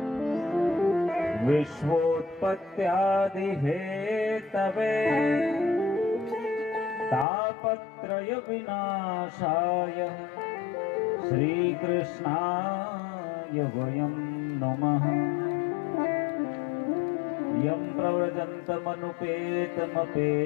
विश्वोत्पत्त्यादि हेतवे तापत्रय विनाशाय श्रीकृष्णाय वयं नमः। यं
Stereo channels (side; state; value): right; drops out; at 7.2 s